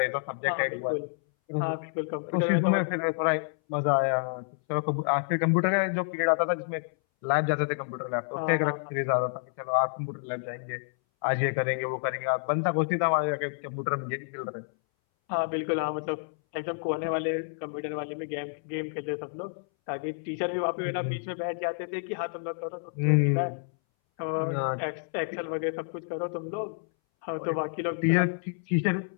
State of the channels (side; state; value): right; silent; 59 dB below the other